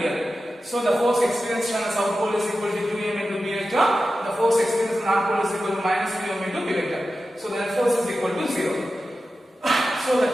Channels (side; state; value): both; normal; correlation 0.92